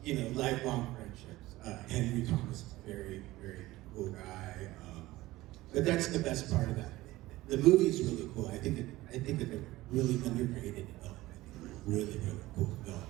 lifelong friendships. Henry Thomas is a very, very cool guy. But that's the best part of that. The movie is really cool. I think that they're really underrated film. I think it's a really, really cool film.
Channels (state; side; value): quieter; left; 17.9 dB